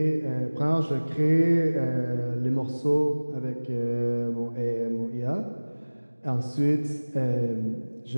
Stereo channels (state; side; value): inverted; both; correlation -1.00